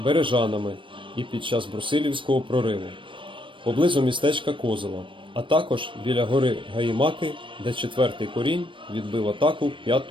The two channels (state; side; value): late; left; 0.25 ms